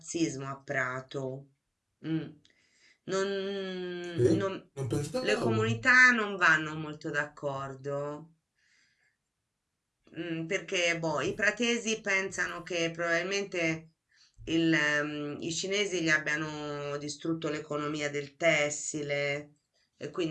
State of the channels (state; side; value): identical; both; correlation 1.00